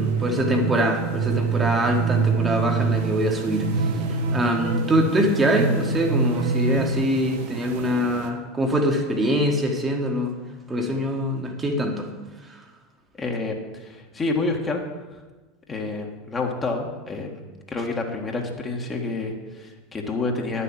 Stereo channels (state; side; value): normal; both; correlation 0.35